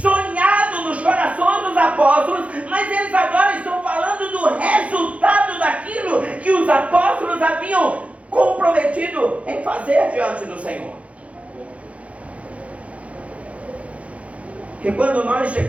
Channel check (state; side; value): late; left; 0.064 ms